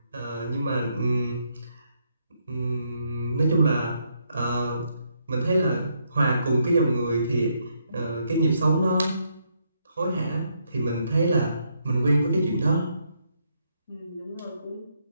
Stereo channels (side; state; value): both; inverted; correlation -0.75